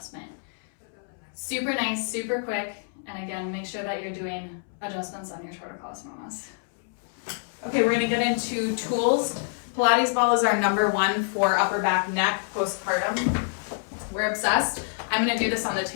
Super nice, super quick. And again, make sure that you're doing adjustments on your torticollis mamas. Okay, we're going to get into tools. Pilates ball is our #1 for upper back, neck, postpartum. We're obsessed. I'm going to do this on the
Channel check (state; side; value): silent; right; 60 dB below the other